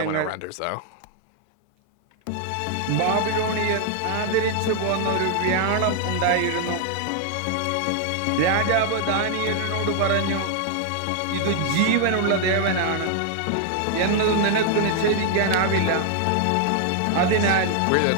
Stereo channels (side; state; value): both; different; correlation 0.00